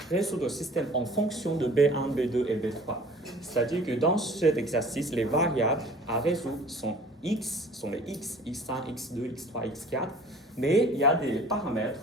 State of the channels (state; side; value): normal; both; correlation 0.48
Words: résoudre le système en fonction de B1, B2 et B3. C'est-à-dire que dans cet exercice, les variables à résoudre sont x, sont les x, x1, x2, x3, x4, mais il y a des paramètres